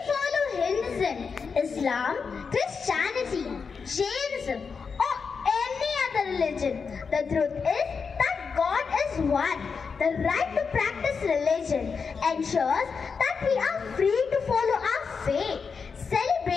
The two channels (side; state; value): right; quieter; 5.5 dB